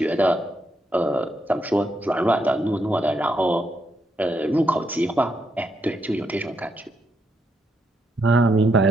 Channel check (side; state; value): both; normal; correlation 0.79